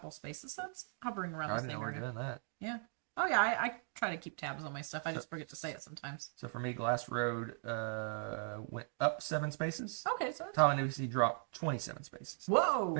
spaces, so it's hovering around the same area. Doing that. Yeah. Oh yeah, I try to keep tabs on my stuff. I just forget to say it sometimes. So for me, Glass Road went up 7 spaces. Okay, so Tom and Lucy dropped 27 spaces. Whoa!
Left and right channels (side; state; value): left; silent; 52 dB below the other